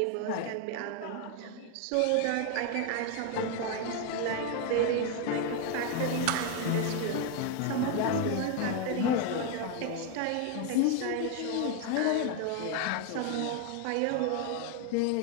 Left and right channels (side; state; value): both; different; correlation 0.01